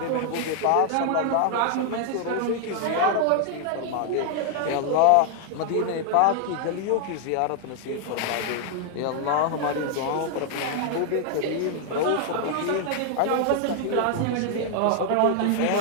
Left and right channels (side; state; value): both; different; correlation 0.00